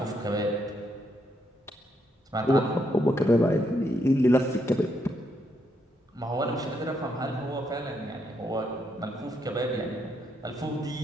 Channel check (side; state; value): both; normal; correlation 0.77